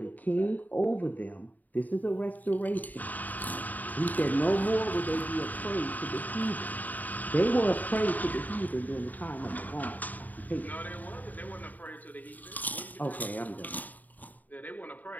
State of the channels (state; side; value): late; right; 0.081 ms